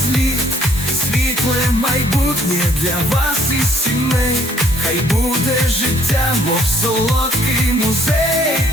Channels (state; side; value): normal; both; correlation 0.64